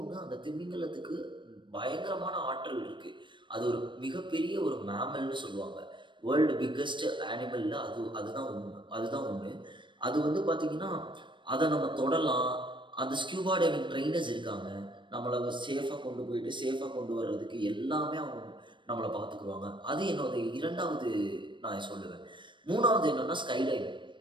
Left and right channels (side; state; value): left; late; 0.23 ms